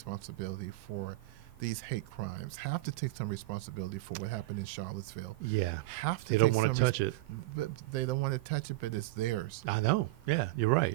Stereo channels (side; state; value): left; quieter; 19.6 dB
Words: for these hate crimes, have to take some responsibility for what happened in Charlottesville. Yeah. Have to They don't take want to some touch it. But they don't want to touch it, but it's theirs. I know. Yeah. You're